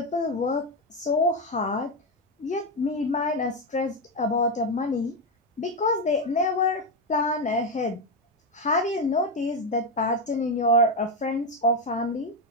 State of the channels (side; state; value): both; normal; correlation 0.09